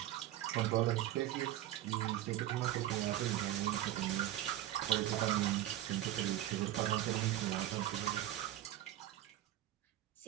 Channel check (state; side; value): quieter; left; 13.5 dB